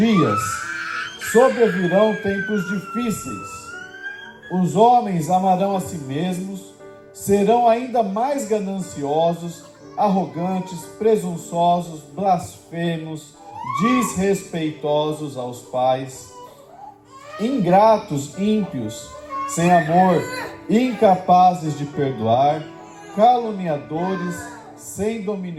sobrevirão tempos difíceis. Os homens amarão a si mesmos, serão ainda mais gananciosos, arrogantes, presunçosos, blasfemos, desrespeitosos aos pais, ingratos, ímpios, sem amor, incapazes de perdoar, caluniadores, sem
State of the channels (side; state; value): both; identical; correlation 1.00